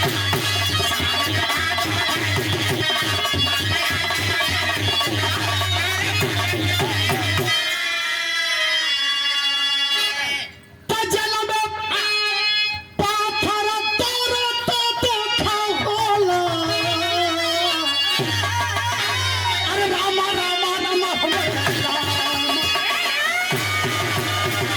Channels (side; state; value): both; identical; correlation 1.00